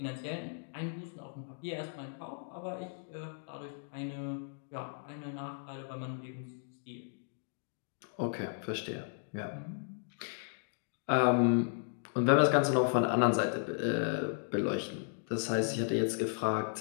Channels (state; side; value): silent; right; digital silence